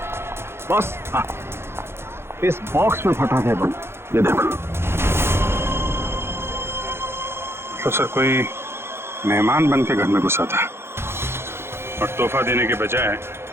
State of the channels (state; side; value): late; left; 0.12 ms